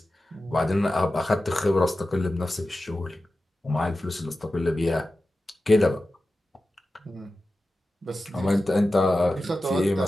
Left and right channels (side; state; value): both; normal; correlation 0.93